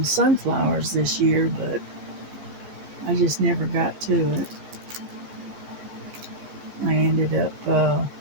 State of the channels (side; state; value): left; late; 14 ms